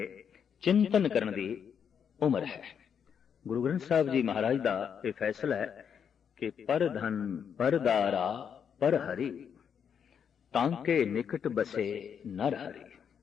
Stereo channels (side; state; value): right; quieter; 7.6 dB